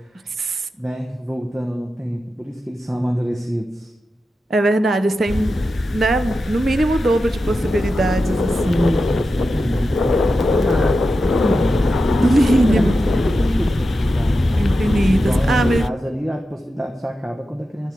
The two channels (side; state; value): both; normal; correlation 0.90